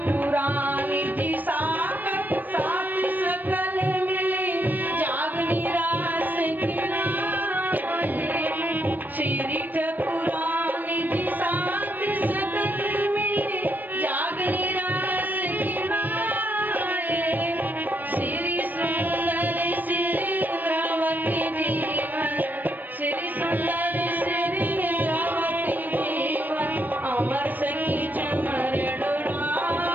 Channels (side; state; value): left; late; 0.087 ms